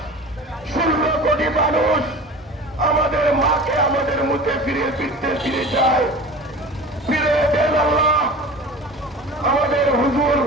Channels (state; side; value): normal; both; correlation 0.37